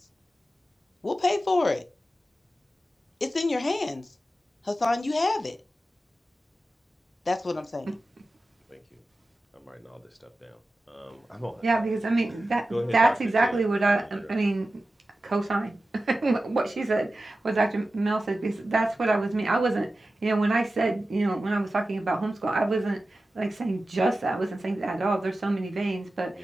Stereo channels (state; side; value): normal; both; correlation 0.94